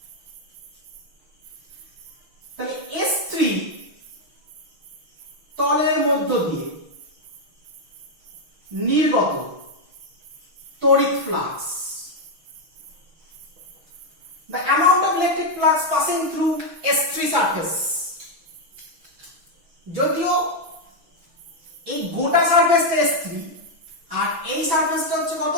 তাহলে S3 তলের মধ্য দিয়ে নির্গত তড়িৎ flux the amount of electric flux passing through S3 surface যদিও এই গোটা সারফেসটা S3 আর এই সারফেসটা হচ্ছে কত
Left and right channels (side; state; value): left; late; 6.2 ms